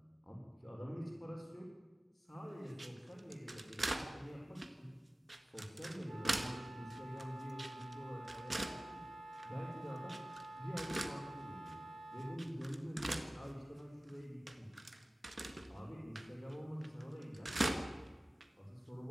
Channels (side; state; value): both; normal; correlation 0.97